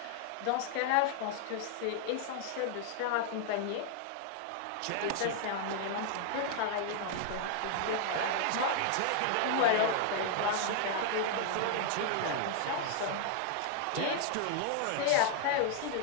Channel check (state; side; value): different; both; correlation 0.00